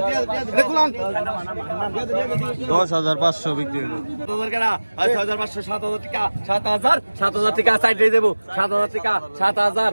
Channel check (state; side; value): inverted; both; correlation -1.00